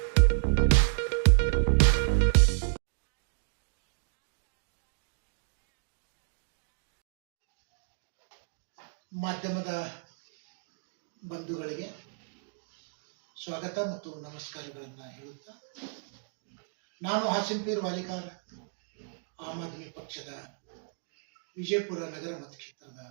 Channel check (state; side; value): silent; left; digital silence